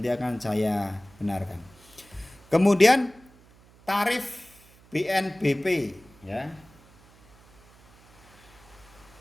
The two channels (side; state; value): right; noise; hum, 27 dB below the sound